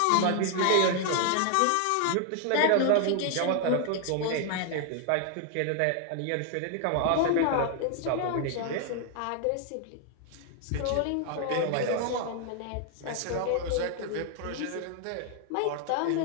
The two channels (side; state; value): both; different; correlation 0.00